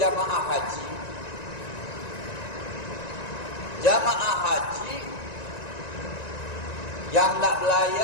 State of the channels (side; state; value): right; late; 1.9 ms